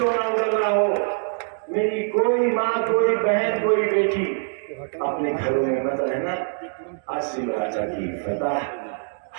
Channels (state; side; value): silent; left; digital silence